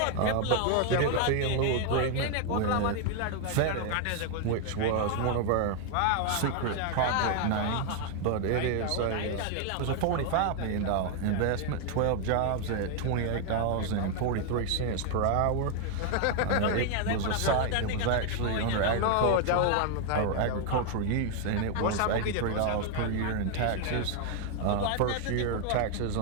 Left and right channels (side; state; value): both; different; correlation 0.00